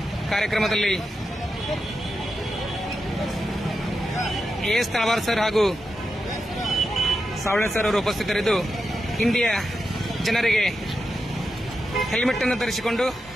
ಕಾರ್ಯಕ್ರಮದಲ್ಲಿ AS ತಳವಾರ್ ಸರ್ ಹಾಗೂ ಸಾವಳೆ ಸರ್ ಅವರು ಉಪಸ್ಥಿತರಿದ್ದು ಇಂಡಿಯ ಜನರಿಗೆ ಹೆಲ್ಮೆಟ್ ಅನ್ನು ಧರಿಸಿಕೊಂಡು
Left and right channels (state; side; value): normal; both; correlation 0.88